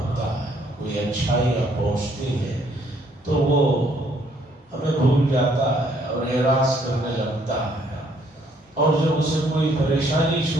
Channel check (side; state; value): both; normal; correlation 0.66